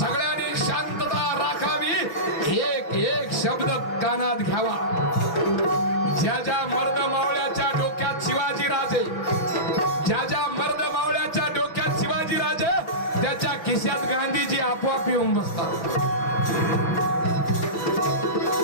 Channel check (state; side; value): late; right; 6.2 ms